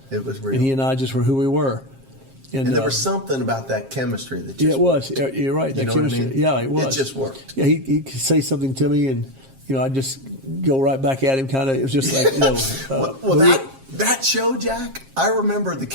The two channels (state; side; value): late; left; 7.5 ms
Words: It was real. And he and I just were who we were. And there was something about that chemistry that just it was. You're right. That chemistry. What I mean? Yeah, it was. It just worked. Yeah, he could say something to me, and I'd just go right back at him. Kind of. It was just like that show, Jack. I remember the